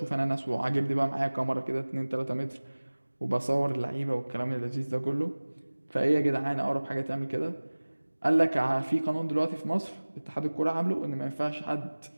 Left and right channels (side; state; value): both; inverted; correlation -1.00